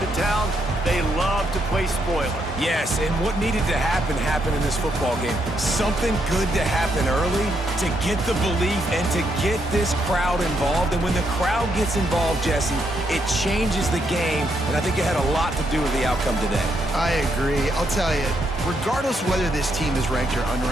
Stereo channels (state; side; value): normal; both; correlation 0.77